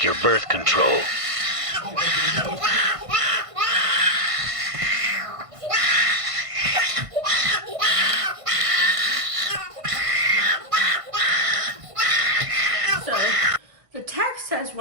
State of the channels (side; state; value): left; late; 1.5 ms